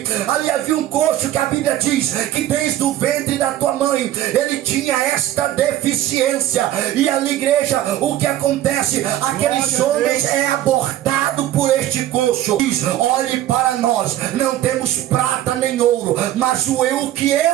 havia um coxo que a Bíblia diz que desde o ventre da tua mãe ele tinha esta deficiência, e ali, igreja, o que acontece? Aqueles homens é abordado por este coxo. Diz: olhe para nós, não temos prata nem ouro, mas o que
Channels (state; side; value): quieter; left; 13.2 dB